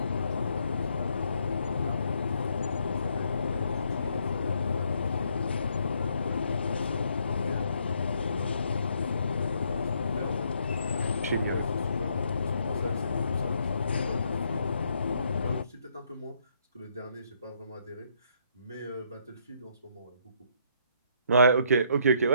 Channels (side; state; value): both; inverted; correlation -0.71